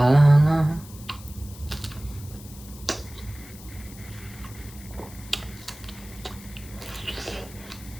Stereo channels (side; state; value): left; noise; hiss, 18 dB below the sound